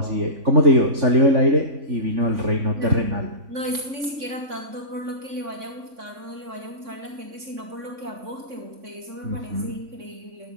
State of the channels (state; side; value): late; left; 3.6 ms